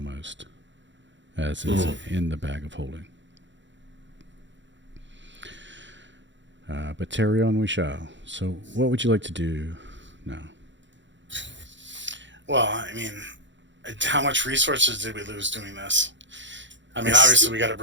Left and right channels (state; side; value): late; left; 0.54 ms